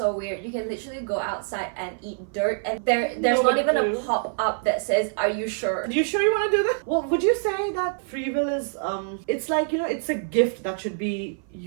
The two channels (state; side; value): silent; left; 57 dB below the other